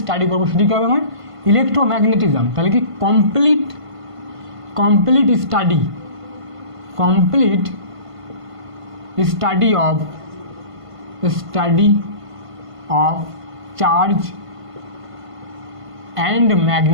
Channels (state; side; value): late; left; 1.5 ms